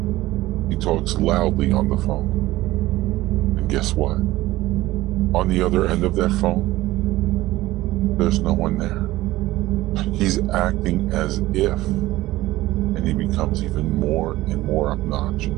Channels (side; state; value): left; quieter; 17.3 dB